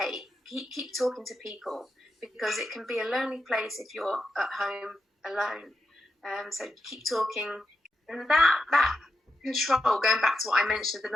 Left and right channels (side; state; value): both; normal; correlation 0.86